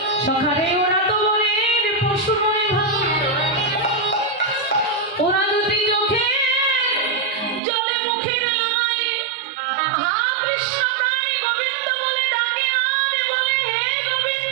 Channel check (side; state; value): left; drops out; at 7.6 s